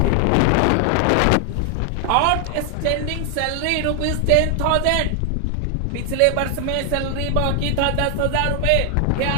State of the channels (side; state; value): both; different; correlation 0.00